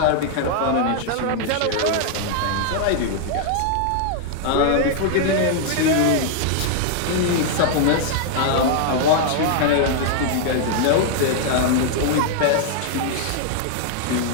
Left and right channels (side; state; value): both; different; correlation -0.01